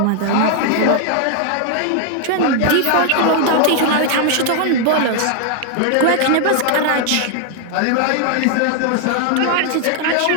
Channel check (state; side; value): different; both; correlation 0.00